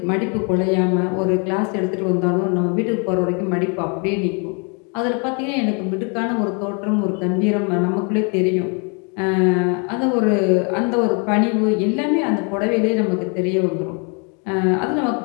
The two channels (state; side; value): quieter; right; 35.7 dB